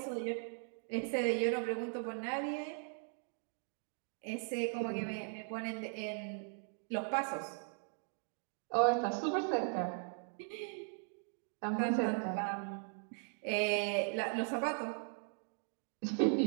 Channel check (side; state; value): left; silent; 52 dB below the other